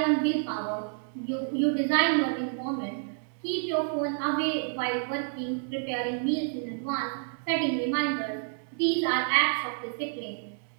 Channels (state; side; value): silent; left; digital silence